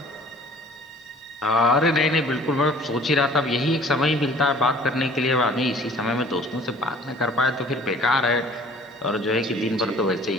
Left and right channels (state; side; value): normal; both; correlation 0.51